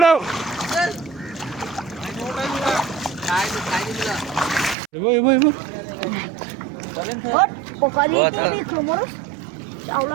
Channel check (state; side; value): drops out; left; at 4.8 s